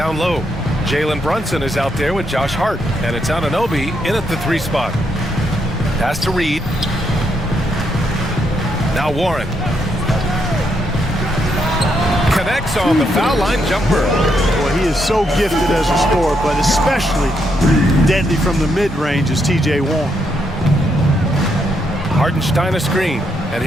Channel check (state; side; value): normal; both; correlation 0.78